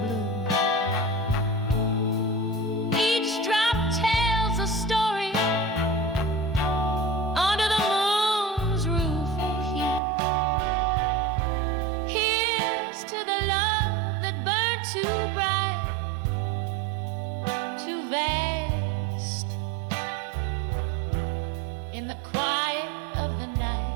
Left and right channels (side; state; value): left; drops out; at 10.0 s